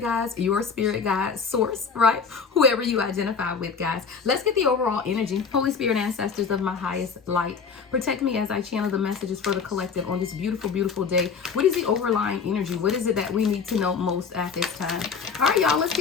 guides, your spirit guide, source, right? Whoever you identify with, guys. Let's get the overall energy. Holy Spirit, ancestors of my highest light, protect me as I channel the messages for the collective on this beautiful, beautiful day. What is the overlying energy? What is it that we need to know most at this time? All right, y'all, let's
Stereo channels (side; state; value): right; quieter; 5.8 dB